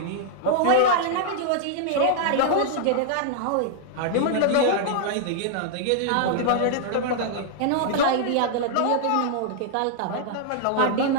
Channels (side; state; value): both; different; correlation -0.01